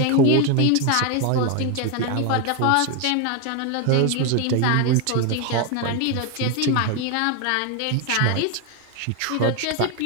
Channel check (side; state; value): both; different; correlation 0.01